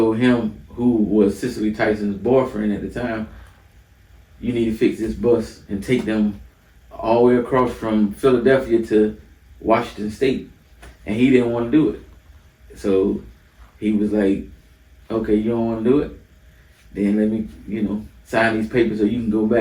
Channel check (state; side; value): identical; both; correlation 1.00